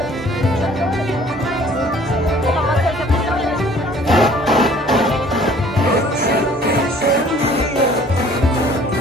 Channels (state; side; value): normal; both; correlation 0.54